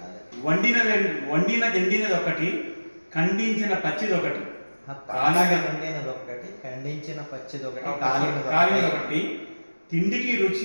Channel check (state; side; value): inverted; both; correlation -1.00